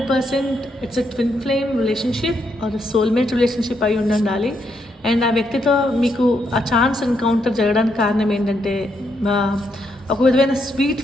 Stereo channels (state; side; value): normal; both; correlation 0.78